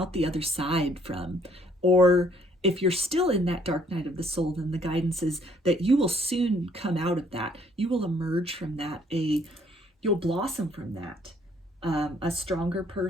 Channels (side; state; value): both; normal; correlation 0.63